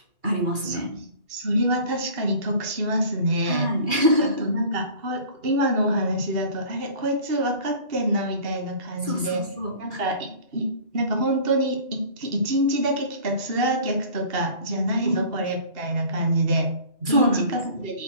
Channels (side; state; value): left; late; 2.4 ms